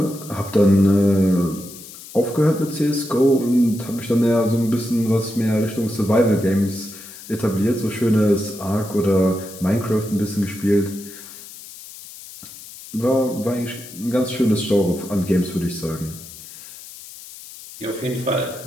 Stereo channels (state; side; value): noise; left; hiss, 16 dB below the sound